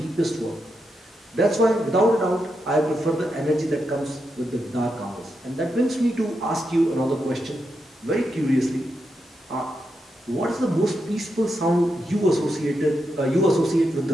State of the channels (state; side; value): normal; both; correlation 0.85